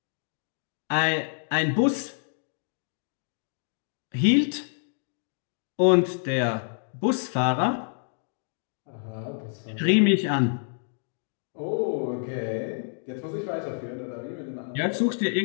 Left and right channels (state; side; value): silent; right; digital silence